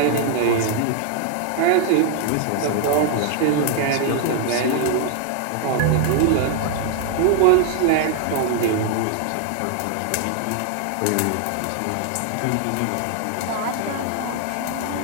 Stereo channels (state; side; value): different; both; correlation 0.00